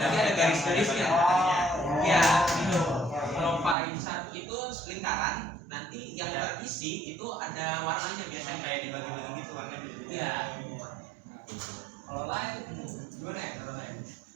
ada garis-garisnya. Ya, gitu. Kalau pie chart itu lingkaran, nanti yang terisi itu ada warnanya biasanya kayak dibagi-bagi gitu warnanya. Iya. Kalau lain gimana ya? Kalau lain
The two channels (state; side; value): drops out; left; at 3.8 s